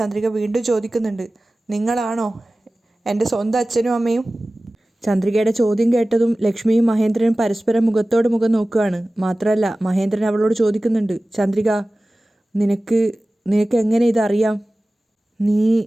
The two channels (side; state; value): both; normal; correlation 0.97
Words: വീണ്ടും ചോദിക്കുന്നുണ്ട്, നിങ്ങളാണോ എൻ്റെ സ്വന്തം അച്ഛനും അമ്മയും? ചന്ദ്രികയുടെ ചോദ്യം കേട്ടതും ലക്ഷ്മിയും മഹേന്ദ്രനും പരസ്പരം മുഖത്തോട് മുഖം നോക്കുകയാണ്. മാത്രമല്ല മഹേന്ദ്രൻ അവളോട് ചോദിക്കുന്നുണ്ട്, ചന്ദ്രിക, നിനക്ക് എങ്ങനെ ഇതറിയാം?